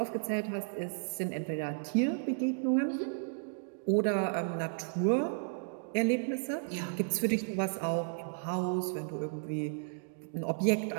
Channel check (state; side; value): silent; left; digital silence